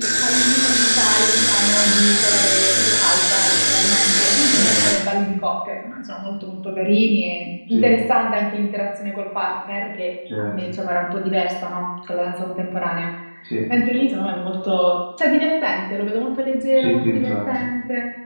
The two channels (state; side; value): inverted; both; correlation -1.00